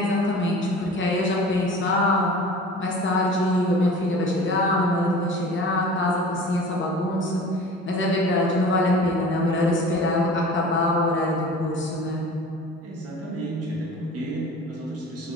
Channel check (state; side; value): normal; both; correlation 0.41